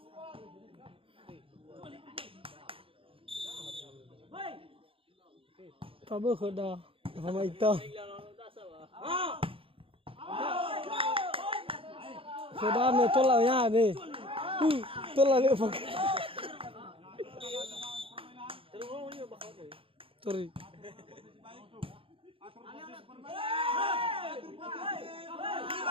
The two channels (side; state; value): left; late; 0.26 ms